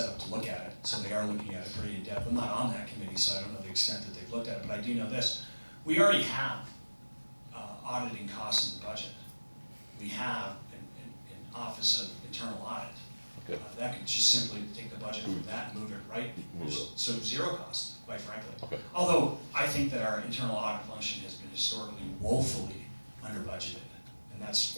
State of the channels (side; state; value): both; inverted; correlation -1.00